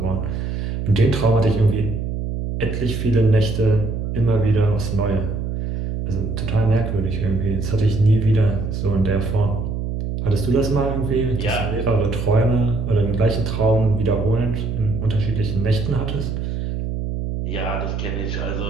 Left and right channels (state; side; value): noise; right; hum, 3 dB below the sound